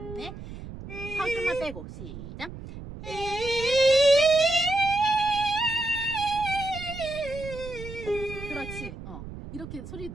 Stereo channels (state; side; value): noise; right; rumble, 12 dB below the sound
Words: 넷. 혀 좀만 빼고 시작. 그렇지. 이렇게 소리